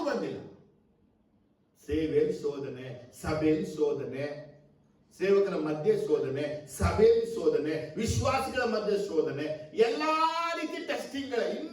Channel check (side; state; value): both; identical; correlation 1.00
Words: ಬಂದಿಲ್ಲ. ಸೇವೆಯಲ್ಲಿ ಶೋಧನೆ, ಸಭೆಯಲ್ಲಿ ಶೋಧನೆ, ಸೇವಕರ ಮಧ್ಯೆ ಶೋಧನೆ, ಸಭೆಯಲ್ಲಿ ಶೋಧನೆ, ವಿಶ್ವಾಸಿಗಳ ಮಧ್ಯೆ ಶೋಧನೆ, ಎಲ್ಲಾ ರೀತಿ ಟೆಸ್ಟಿಂಗ್ಗಳ